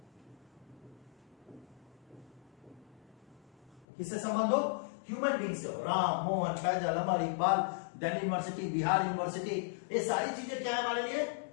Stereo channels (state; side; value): drops out; right; at 3.9 s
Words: किससे संबंध हो, ह्यूमन बीइंग से हो। राम, मोहन, फैजल, अमर, इकबाल, दिल्ली यूनिवर्सिटी, बिहार यूनिवर्सिटी, ये सारी चीजें क्या है हमारे लिए,